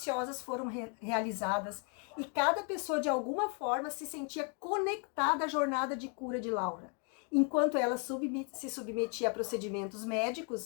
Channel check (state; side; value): quieter; right; 39.0 dB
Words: foram realizadas e cada pessoa de alguma forma se sentia conectada à jornada de cura de Laura. Enquanto ela se submetia a procedimentos